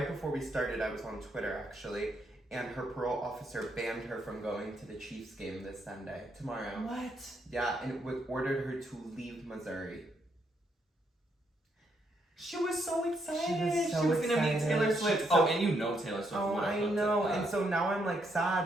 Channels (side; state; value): both; normal; correlation 0.76